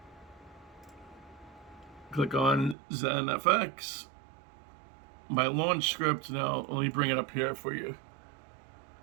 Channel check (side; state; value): left; drops out; at 2.8 s